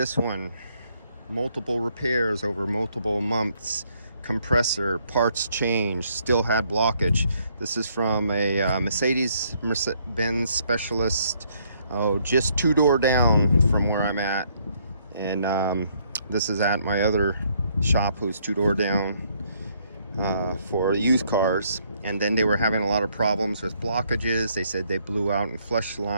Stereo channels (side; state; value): both; inverted; correlation -0.69